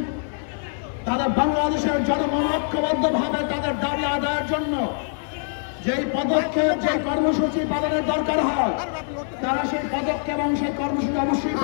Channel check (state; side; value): silent; right; 58 dB below the other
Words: তাদের বাংলাদেশের জনগণ ঐক্যবদ্ধ ভাবে তাদের দাবি আদায়ের জন্য যেই পদক্ষেপ, যে কর্মসূচি পালনের দরকার হয়, তারা সেই পদক্ষেপ এবং সেই কর্মসূচি অবশ্যই